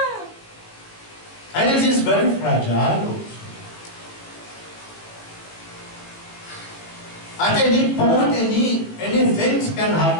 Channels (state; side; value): late; right; 18 ms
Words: And it is very fragile also. At any point, any things can